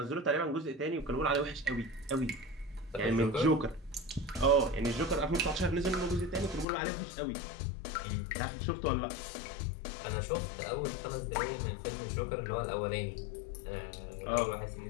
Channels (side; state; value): right; drops out; at 6.7 s